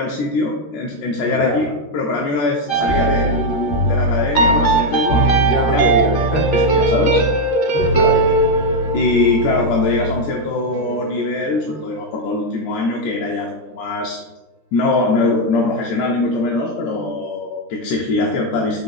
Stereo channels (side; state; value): right; late; 13 ms